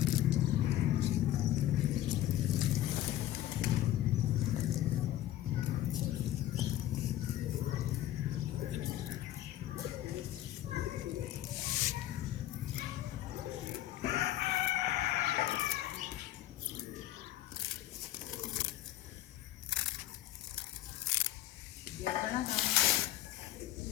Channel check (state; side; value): quieter; right; 13.5 dB